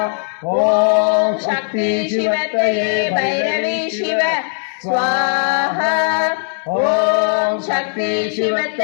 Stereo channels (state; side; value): silent; right; digital silence